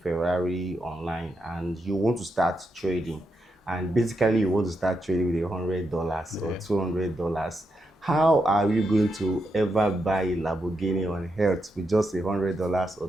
online, and you want to start trading, and basically you want to start trading with $100 or Yeah. $200. How are you going to ever buy a Lamborghini on earth with just $100 or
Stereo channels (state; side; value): normal; both; correlation 0.83